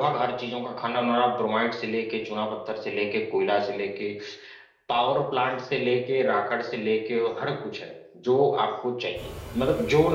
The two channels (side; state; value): both; identical; correlation 1.00